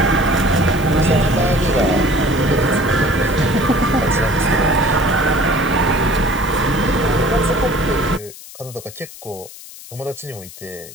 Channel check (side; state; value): left; noise; hiss, 17 dB below the sound